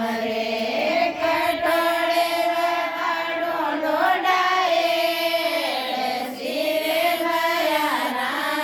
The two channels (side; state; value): both; identical; correlation 1.00